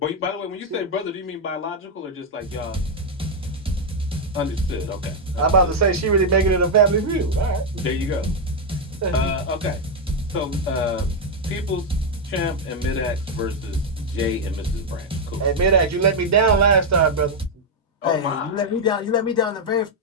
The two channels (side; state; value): both; normal; correlation 0.01